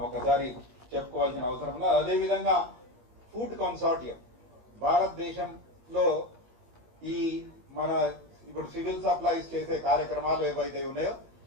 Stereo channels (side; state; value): left; late; 18 ms